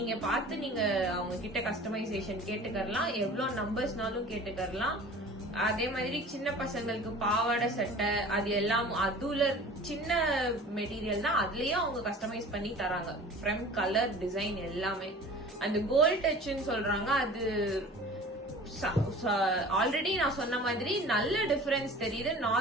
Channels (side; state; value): both; normal; correlation 0.42